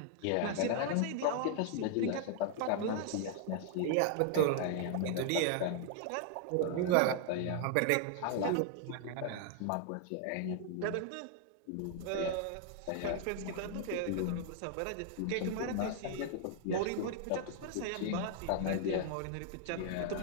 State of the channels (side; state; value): both; different; correlation 0.00